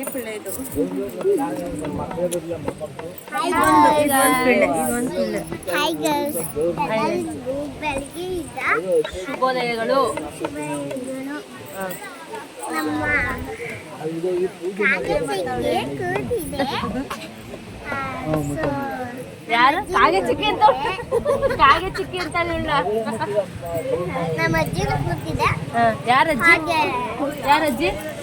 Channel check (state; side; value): identical; both; correlation 1.00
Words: ಪಿಳ್ಳೆ ಇದು. ಹಾಯ್ ಗರ್ಲ್ಸ್, ಬೆಳಗ್ಗೆ ಇದ್ದ ಶುಭೋದಯಗಳು. ನಮ್ಮ ಕಾಗಚಿಕ್ಕೆ ಕೂತಿದೆ. ಯಾರು ಕಾಗೆ ಚಿಕ್ಕಿ ಅಂತ ಕಾಗೆ ಚಿಕ್ಕಿ ಅಂತ ಹೇಳ. ನಮ್ಮ ಅಜ್ಜಿನೂ ಕೂತಿದೆ. ಯಾರಜ್ಜಿ ಹಾಗೆ ಯಾರಜ್ಜಿ?